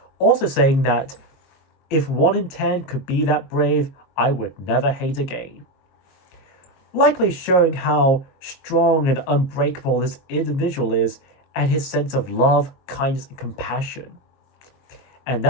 also saying that if 1 in 10 could be that brave, I would never hate again. Likely showing how strong and unbreakable this individual is and his sense of love, kindness, and compassion. And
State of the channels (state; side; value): late; right; 22 ms